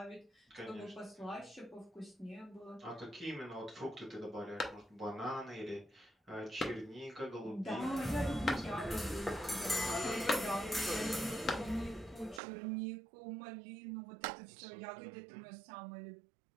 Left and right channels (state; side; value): drops out; left; at 12.4 s